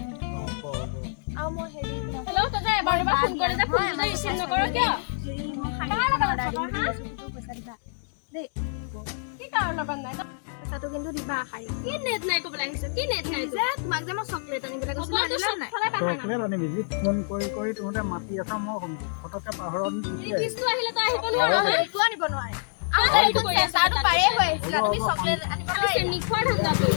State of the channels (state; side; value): silent; right; digital silence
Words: আৰু মই হেৰি হেল্ল' তই যে এবাৰ দুবাৰ ফোন কৰি যে ফোনটো ৰিচিভ নকৰ কিয় পইচা দিবা দেই কি কাৰণ লগত নাই পইচাটো কিন্তু দিবা শাৰী কি নেট নাই ক'বলৈ আহিছ কি নেট নাই যে তোমাক যে মই চকলেট আনিবলৈ কৈছিলো নাই চকলেট আনিবি যি ফোন কৰি তহঁতে মাতি আছা মই ফটককে পাহৰত ৰিচিভটো আহিলে তই আহিব নোৱাৰ একো আনিব নোৱাৰে পাৰে হৈ আহিছিলা তুমি চকলেট আনিব নিখোৱাৰ ধান্দা